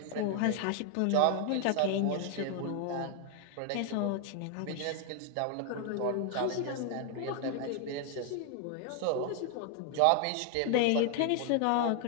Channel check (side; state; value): both; different; correlation 0.00